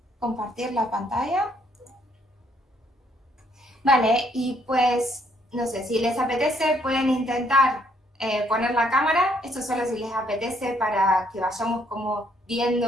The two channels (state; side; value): normal; both; correlation 0.68